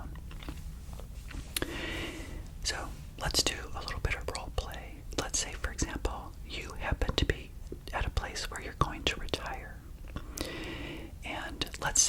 So let's do a little bit of role play. Let's say, for example, you happen to be at a place where you're going to retire. And let's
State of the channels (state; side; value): identical; both; correlation 1.00